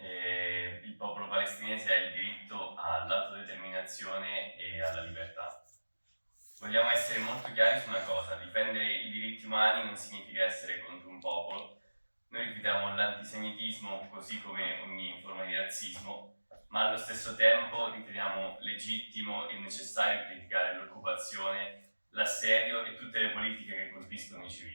popolo palestinese ha il diritto all'autodeterminazione e alla libertà. Vogliamo essere molto chiari su una cosa: difendere i diritti umani non significa essere contro un popolo. Noi rifiutiamo l'antisemitismo così come ogni forma di razzismo, ma allo stesso tempo riteniamo legittimo e necessario criticare l'occupazione, l'assedio e tutte le politiche che colpiscono i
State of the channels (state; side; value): inverted; both; correlation -1.00